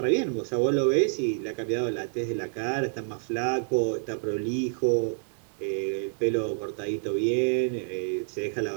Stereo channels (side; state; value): left; silent; digital silence